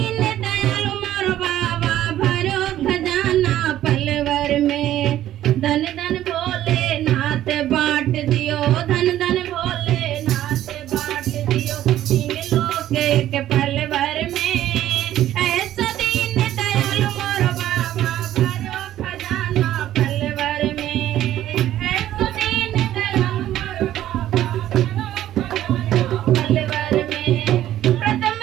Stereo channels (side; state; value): left; quieter; 12.8 dB